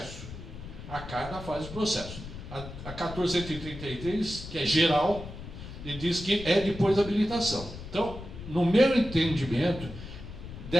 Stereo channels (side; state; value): left; noise; rumble, 12 dB below the sound